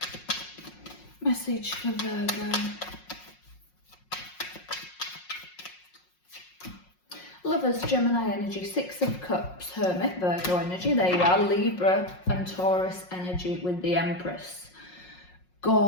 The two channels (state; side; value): late; right; 5.5 ms